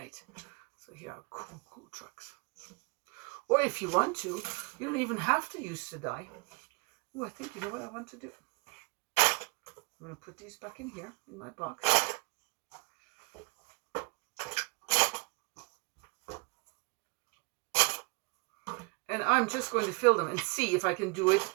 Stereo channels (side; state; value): left; quieter; 30.8 dB